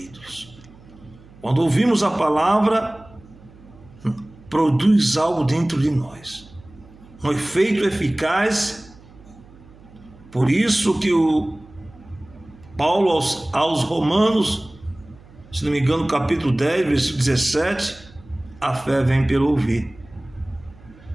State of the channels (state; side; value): noise; right; hum, 23 dB below the sound